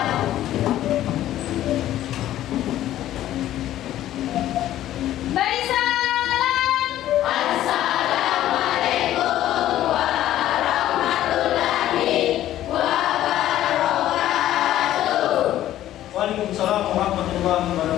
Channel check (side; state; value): right; quieter; 13.1 dB